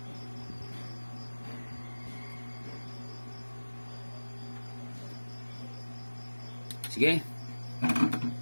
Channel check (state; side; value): inverted; both; correlation -1.00